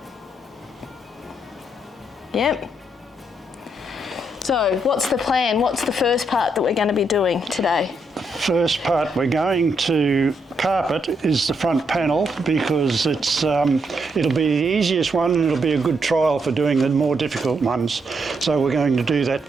Yep. So what's the plan? What's the first part that we're going to be doing today? First part we're going to carpet is the front panel because it's it'll be the easiest one and it'll be a good trial for doing the more difficult ones. So we're going to do that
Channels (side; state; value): both; normal; correlation 0.78